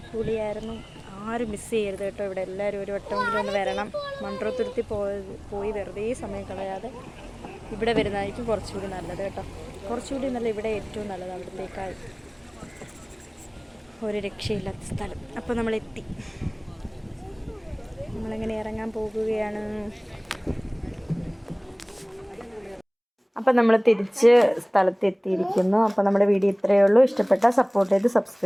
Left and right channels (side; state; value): both; identical; correlation 1.00